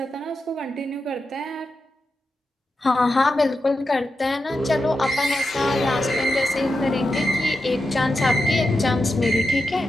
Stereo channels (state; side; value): normal; both; correlation 0.88